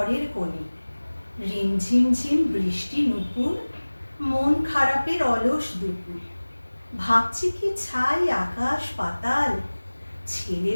কোণে, রিমঝিমঝিম বৃষ্টি নুপুর, মন খারাপের অলস দুপুর। ভাবছি কি ছাই আকাশ পাতাল,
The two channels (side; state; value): both; inverted; correlation -1.00